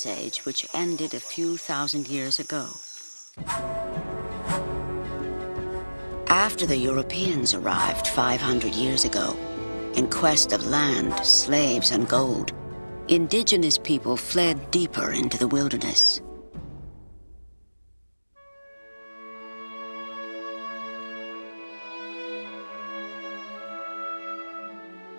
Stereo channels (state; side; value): inverted; both; correlation -1.00